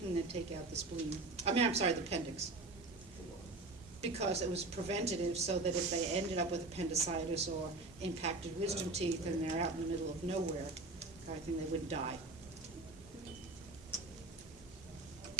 and they'd take out the spleen. I'm sorry, the appendix. Because it was preventative, so that if they ended up with appendicitis or impacted wisdom teeth and they're out in the middle of nowhere, I think they wouldn't die.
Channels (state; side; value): quieter; left; 3.3 dB